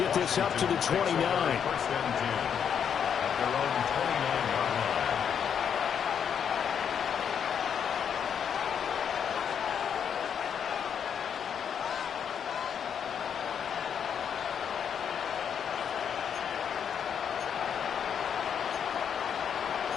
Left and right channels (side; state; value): right; quieter; 7.9 dB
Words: get this up to the 29.